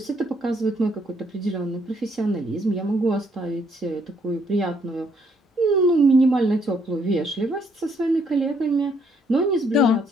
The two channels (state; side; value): normal; both; correlation 0.69